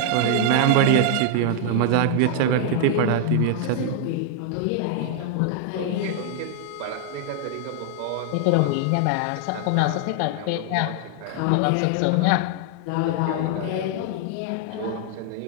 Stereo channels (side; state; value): both; different; correlation 0.00